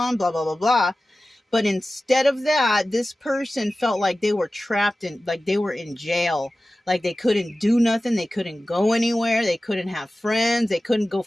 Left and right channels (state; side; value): normal; both; correlation 0.96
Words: blah, blah, blah, blah. But instead of that, this person felt like they were trapped in, like they were in jail. Like they couldn't do nothing. They couldn't go anywhere. They couldn't have friends. They couldn't go